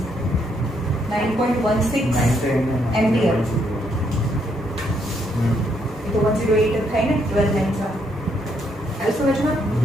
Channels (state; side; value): normal; both; correlation 0.74